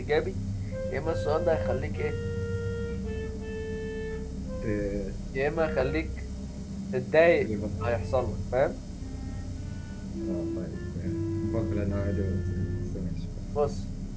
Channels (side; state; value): both; identical; correlation 1.00